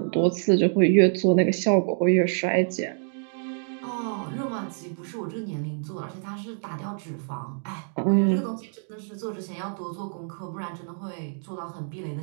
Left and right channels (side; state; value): left; silent; 61 dB below the other